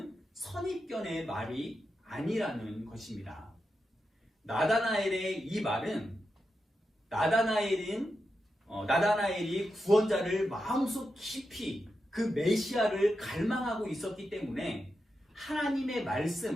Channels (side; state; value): both; normal; correlation 0.88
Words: 선입견의 말이 아니라는 것입니다. 나다나엘의 이 말은 나다나엘은 나다나엘이 구원자를 마음속 깊이 그 메시아를 갈망하고 있었기 때문에 하나님의